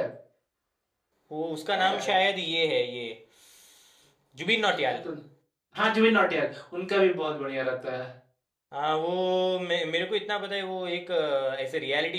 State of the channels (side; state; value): both; identical; correlation 1.00